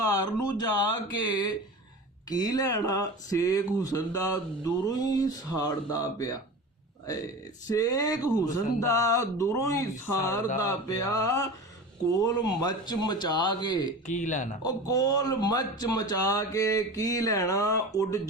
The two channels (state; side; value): normal; both; correlation 0.33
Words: ਨੂੰ ਜਾ ਕੇ ਕੀ ਲੈਣਾ। ਸੇਖ ਹੁਸਨ ਦਾ ਦੂਰੋਂ ਹੀ ਸਾੜਦਾ ਪਿਆ। ਸੇਖ ਹੁਸਨ ਦਾ ਦੂਰੋਂ ਹੀ ਸਾੜਦਾ ਪਿਆ। ਕੋਲ ਮੱਚ ਮਚਾ ਕੇ ਕੀ ਲੈਣਾ। ਉਹ ਕੋਲ ਮੱਚ ਮਚਾ ਕੇ ਕੀ ਲੈਣਾ। ਉੱਡ